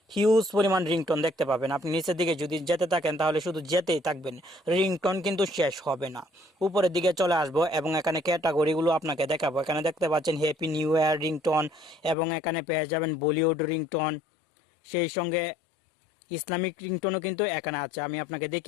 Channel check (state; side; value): drops out; right; at 12.2 s